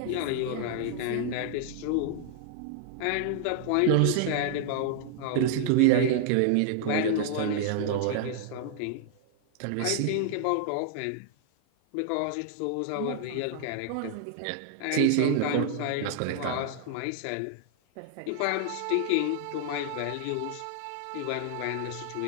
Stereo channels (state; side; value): different; both; correlation 0.00